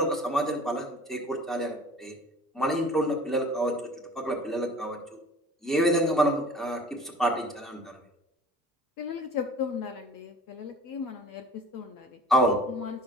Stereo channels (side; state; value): both; normal; correlation 0.45